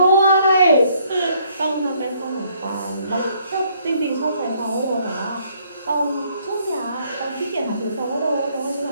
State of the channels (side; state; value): both; inverted; correlation -0.66